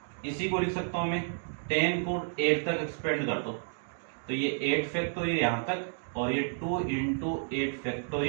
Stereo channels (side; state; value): left; silent; 57 dB below the other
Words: इसी को लिख सकता हूं मैं 10 को 8 तक एक्सपेंड कर दो, तो ये 8 फैक्टोरियल यहां तक, और ये 2 इंटू 8